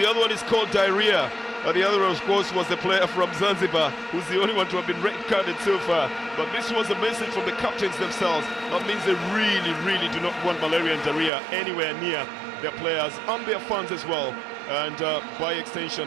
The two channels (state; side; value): drops out; left; at 11.3 s